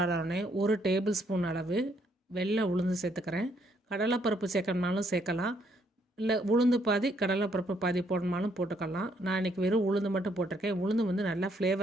1 டேபிள் ஸ்பூன் அளவு வெள்ளை உளுந்து சேர்த்துக்கிறேன். கடலைப்பருப்பு சேர்க்கணுனாலும் சேர்க்கலாம், இல்லை உளுந்து பாதி கடலைப்பருப்பு பாதி போடணுனாலும் போட்டுக்கலாம். நான் இன்றைக்கி வெறும் உளுந்து மட்டும் போட்டிருக்கேன். உளுந்து வந்து நல்லா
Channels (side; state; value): both; normal; correlation 0.71